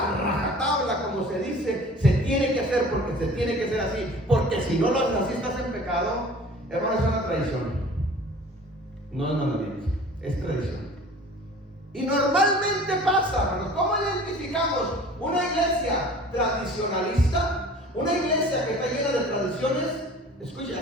como se dice, se tiene que hacer porque se tiene que hacer así, porque si no lo haces así estás en pecado. Hermano, es una tradición, no es mandamiento, es tradición. Y normalmente pasa, hermanos. ¿Cómo identificamos una iglesia tradicionalista? Una iglesia que está llena de tradiciones. Escucha,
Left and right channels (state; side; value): normal; both; correlation 0.45